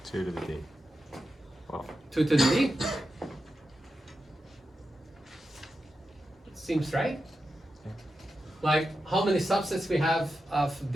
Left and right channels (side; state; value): both; normal; correlation 0.90